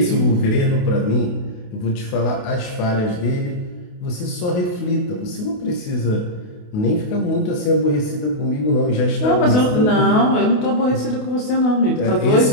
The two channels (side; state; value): right; late; 28 ms